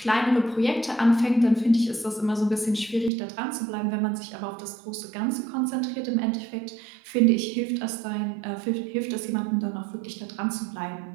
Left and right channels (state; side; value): drops out; left; at 3.1 s